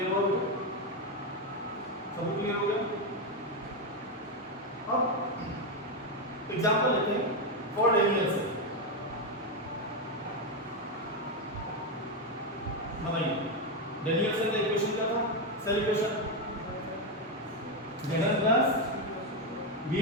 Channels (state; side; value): normal; both; correlation 0.07